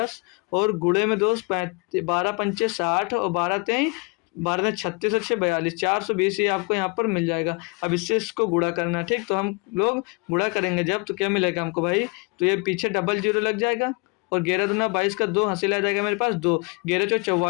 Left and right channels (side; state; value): right; quieter; 30.5 dB